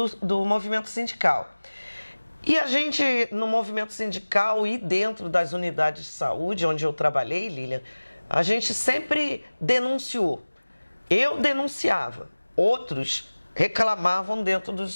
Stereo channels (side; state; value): both; inverted; correlation -1.00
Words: movimento sindical. E a gente, no movimento sindical e dentro das unidades de saúde, onde eu trabalhei, Lilian, a gente sempre denunciou. Eu denunciava, outros reclamavam dentro